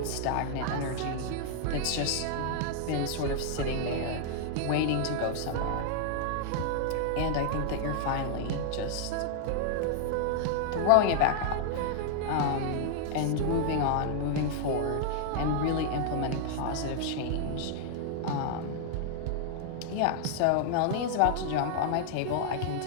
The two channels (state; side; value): different; both; correlation -0.01